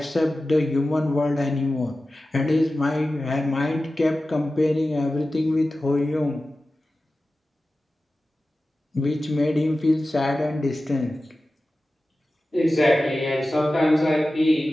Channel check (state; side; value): normal; both; correlation 0.95